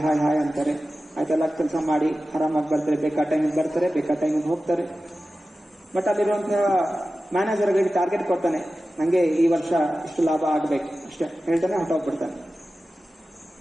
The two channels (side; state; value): both; normal; correlation 0.94